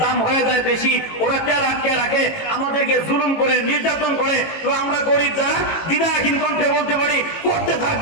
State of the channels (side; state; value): right; late; 18 ms